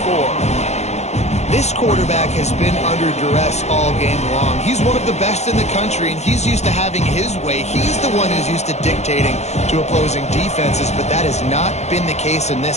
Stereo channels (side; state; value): right; late; 0.32 ms